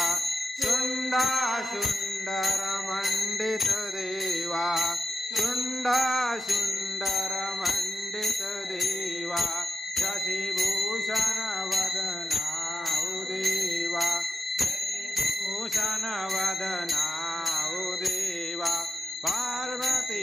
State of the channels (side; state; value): both; normal; correlation 0.89